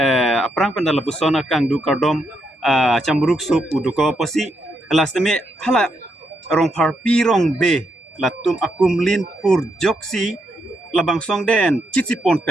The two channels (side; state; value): both; normal; correlation 0.80